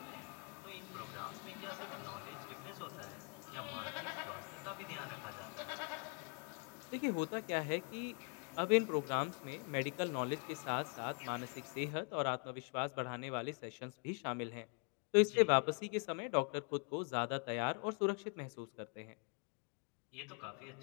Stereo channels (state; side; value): quieter; right; 39.1 dB